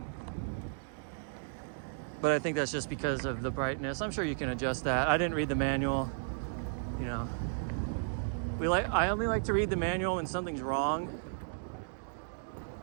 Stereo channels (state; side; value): silent; left; digital silence